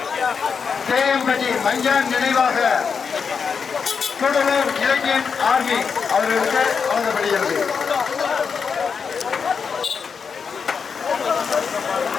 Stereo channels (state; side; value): quieter; right; 6.0 dB